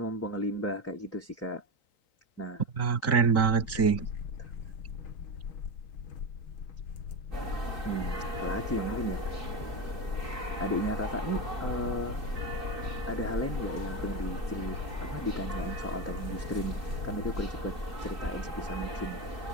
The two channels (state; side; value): late; right; 3.9 ms